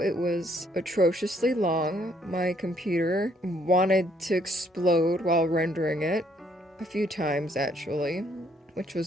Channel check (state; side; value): normal; both; correlation 0.68